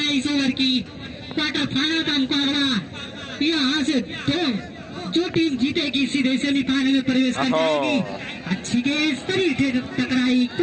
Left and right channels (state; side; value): identical; both; correlation 1.00